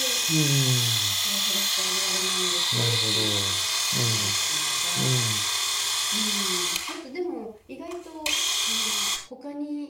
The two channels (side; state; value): both; identical; correlation 1.00